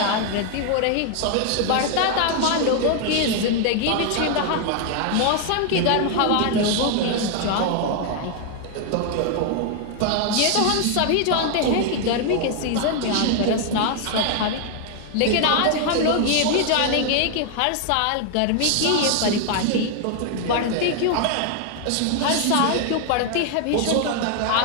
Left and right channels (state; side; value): different; both; correlation 0.00